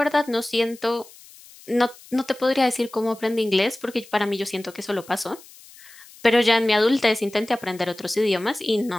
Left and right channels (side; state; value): left; noise; hiss, 22 dB below the sound